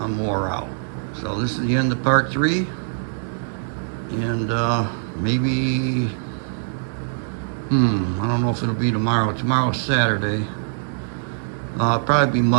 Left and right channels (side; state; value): left; silent; digital silence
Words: I'm wore out. So this is the end of part 3. And maybe, I don't know if it'll be tomorrow. Tomorrow's Saturday. Probably be